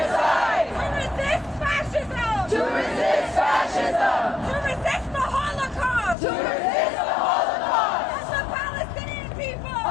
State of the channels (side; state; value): right; drops out; at 6.2 s